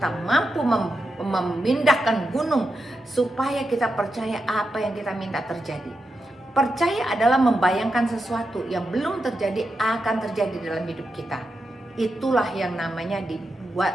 mampu memindahkan gunung supaya kita percaya apa yang kita minta terjadi. Percaya adalah membayangkan sesuatu yang belum terjadi akan terjadi dalam hidup kita. Itulah yang namanya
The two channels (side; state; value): both; normal; correlation 0.87